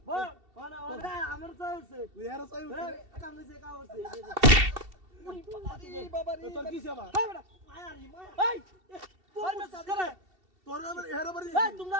বল ওনা ওনা আমার চাইছে তুই এর চাই কামে কা হচ্ছে এই বাবা রে তোর কি সেবা এই বেটা মায়ারি মায়া এই তোর মে সাদরে তোর আবার এর বাড়ি এই তোমরা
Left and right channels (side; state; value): left; late; 2.7 ms